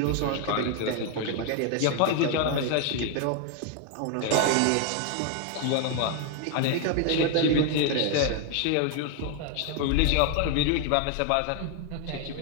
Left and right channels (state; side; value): different; both; correlation 0.01